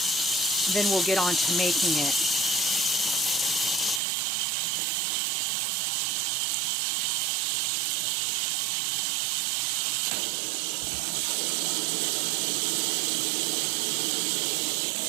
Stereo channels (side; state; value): left; drops out; at 4.0 s